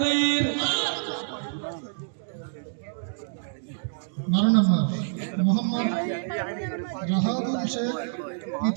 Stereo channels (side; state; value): left; silent; digital silence